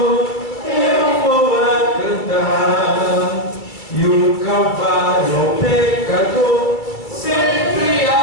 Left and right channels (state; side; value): late; right; 2.3 ms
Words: eu vou a cantar, e o Calvário ao pecador sempre